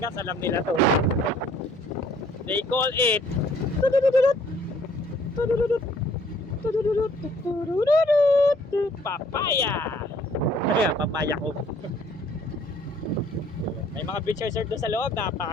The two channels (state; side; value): normal; both; correlation 0.60